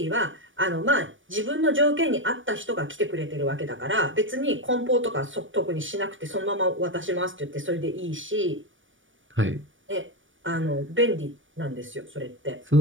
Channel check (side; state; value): left; late; 0.56 ms